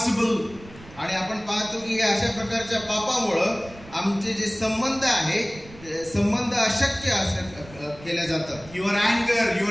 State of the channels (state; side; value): noise; right; rumble, 19 dB below the sound